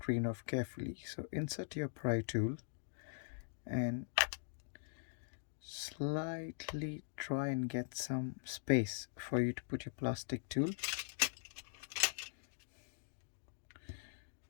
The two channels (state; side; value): silent; right; digital silence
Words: off carefully. So insert your pry tool and slightly try and get some space for you to put your plastic tool.